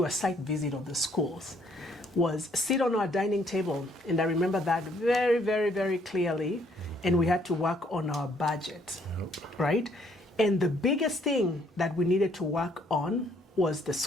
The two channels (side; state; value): both; normal; correlation 0.66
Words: a site visit of the schools was sit on our dining table. And I remember that very, very, very clearly. And we had to work on our budget, right? And the biggest thing that we needed to work on was the